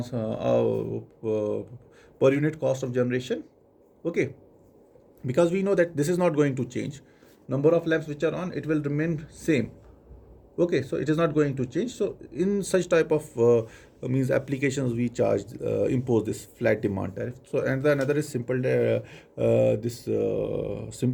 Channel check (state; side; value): identical; both; correlation 1.00